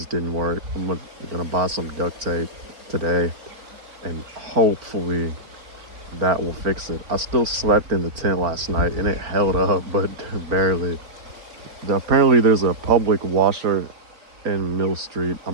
didn't work. I'm gonna buy some duct tape today, and hopefully that will fix it. I still slept in the tent last night and it held up, but barely. Apparently there's a public washer in Mill Street.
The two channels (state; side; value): late; left; 4.5 ms